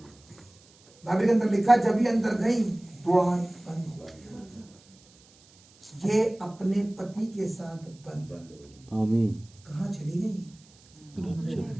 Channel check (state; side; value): noise; right; hiss, 28 dB below the sound